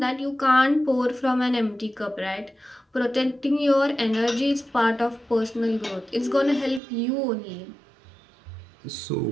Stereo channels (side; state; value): left; drops out; at 6.8 s